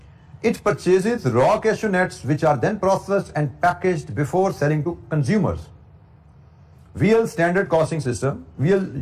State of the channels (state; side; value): identical; both; correlation 1.00